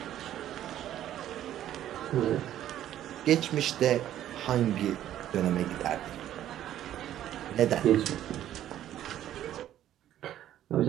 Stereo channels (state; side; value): quieter; left; 12.0 dB